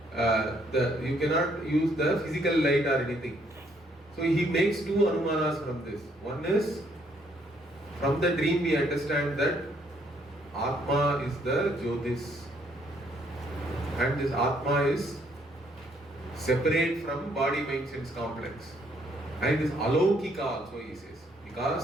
use the physical light or anything. So he makes two Anumanas from this. One is, from the dream we understand that Atma is the Jyotis. And this Atma is separate from body mind sense complex. And this Alaukika also he says.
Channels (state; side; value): normal; both; correlation 0.68